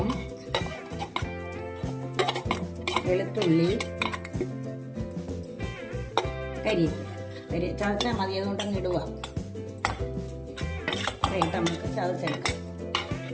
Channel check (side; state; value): both; identical; correlation 1.00